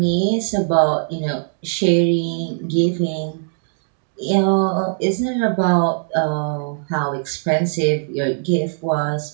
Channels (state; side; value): silent; left; digital silence